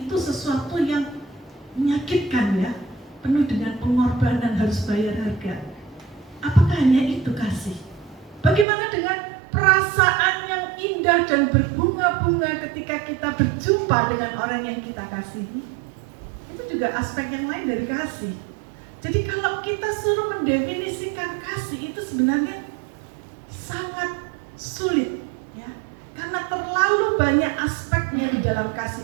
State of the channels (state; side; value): drops out; left; at 8.7 s